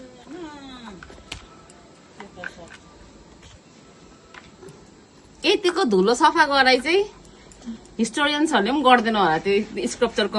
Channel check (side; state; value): both; identical; correlation 1.00